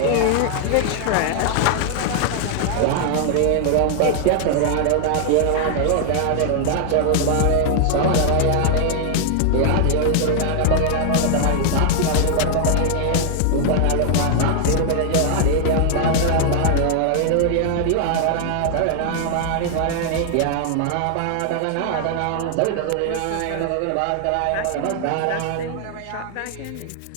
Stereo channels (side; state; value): both; different; correlation 0.00